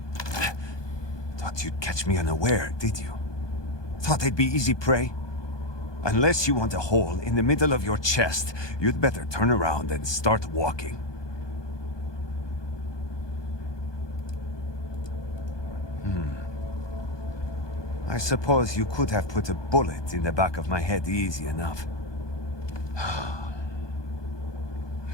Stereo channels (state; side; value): late; right; 1.2 ms